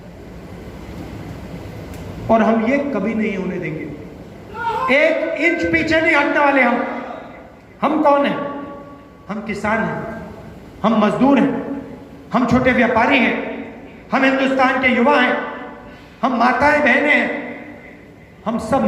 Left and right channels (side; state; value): both; identical; correlation 1.00